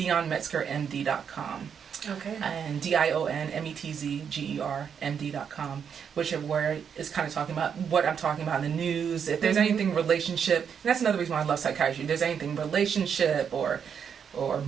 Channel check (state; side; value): quieter; left; 7.4 dB